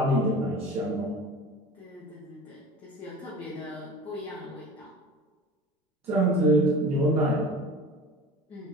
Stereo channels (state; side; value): normal; both; correlation 0.38